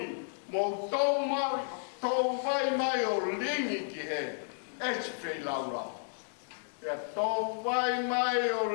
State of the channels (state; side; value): silent; right; digital silence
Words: mō tō vai mai o lingi ki he, esi whei lau lau. Pea tō vai mai o